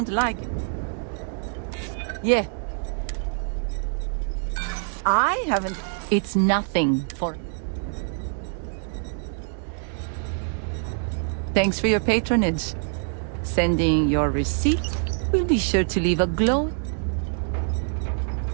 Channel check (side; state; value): left; silent; 58 dB below the other